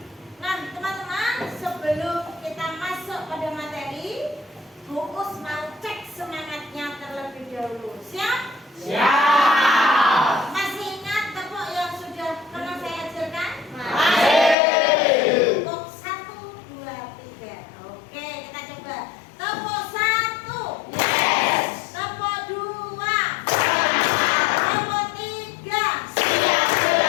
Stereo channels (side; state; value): right; drops out; at 14.6 s